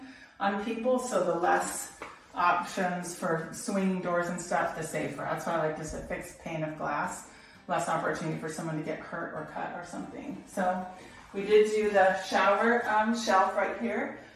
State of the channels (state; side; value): identical; both; correlation 1.00